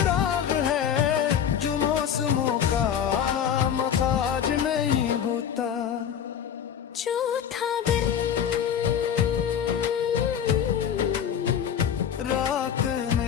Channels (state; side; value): quieter; right; 8.7 dB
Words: है जो मौसमों का मखाज नहीं होता। चौथा दिन रात